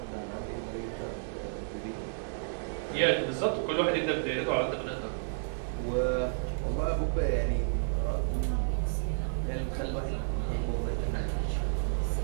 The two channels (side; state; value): left; silent; digital silence